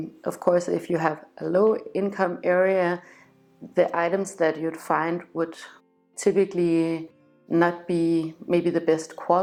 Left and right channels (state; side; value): identical; both; correlation 1.00